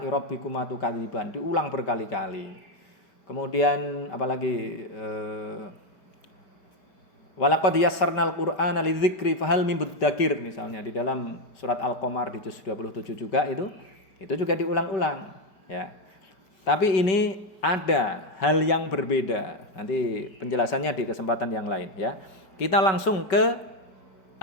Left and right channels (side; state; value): right; late; 5.2 ms